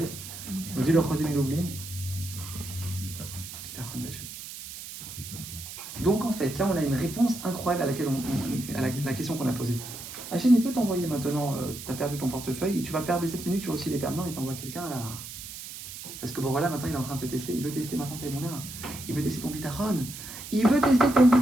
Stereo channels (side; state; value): right; noise; hiss, 11 dB below the sound